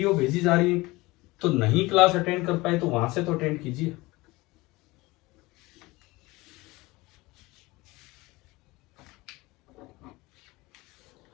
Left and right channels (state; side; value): quieter; right; 21.6 dB